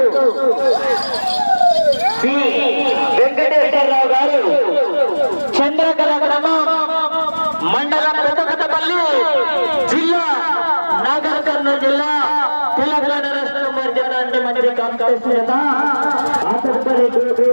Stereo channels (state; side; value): inverted; both; correlation -1.00